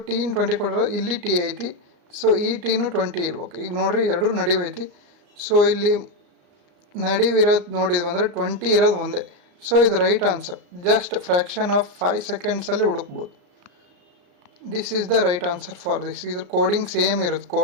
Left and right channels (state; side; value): late; left; 34 ms